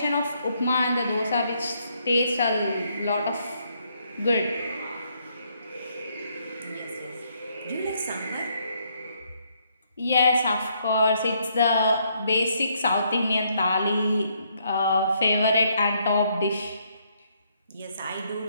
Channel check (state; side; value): inverted; both; correlation -0.72